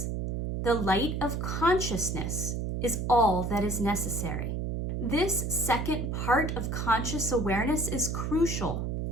The light of consciousness is all that is necessary. This second part of conscious awareness is crucial.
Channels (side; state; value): right; noise; hum, 2 dB below the sound